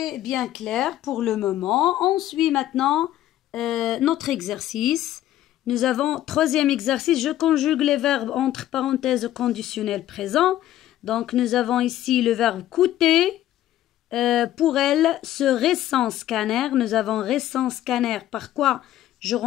bien clair pour le moment. On suit maintenant notre exercice. Nous avons troisième exercice, je conjugue les verbes entre parenthèses au conditionnel présent. Donc nous avons ici le verbe coûter. Pour elle, ce récent scanner, nous avons récent scanner. Par quoi je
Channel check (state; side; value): quieter; right; 13.1 dB